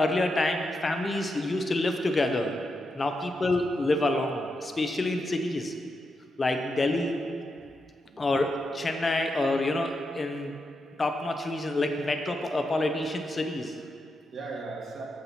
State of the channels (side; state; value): both; normal; correlation 0.85